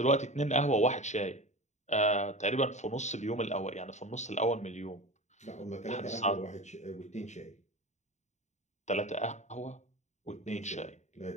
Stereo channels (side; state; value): right; late; 0.34 ms